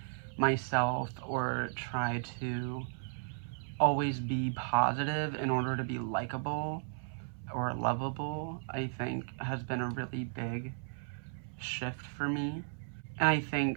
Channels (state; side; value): silent; left; 54 dB below the other